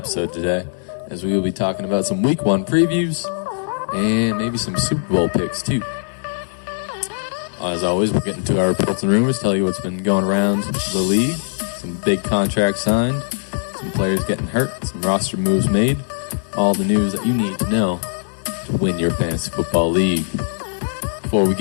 today, as we will be talking about some Week 1 previews and maybe some Super Bowl picks, too. As always, we'll get into our reports and rumors, tell you what's been going around the league, some big contracts signed, some players getting hurt, some roster moves made, all the news that you need to know to win your fantasy football league. Before we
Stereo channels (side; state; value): right; silent; digital silence